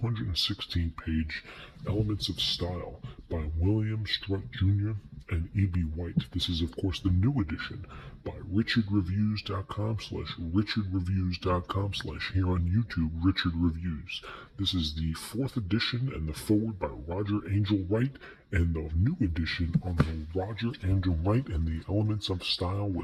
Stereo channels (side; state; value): both; identical; correlation 1.00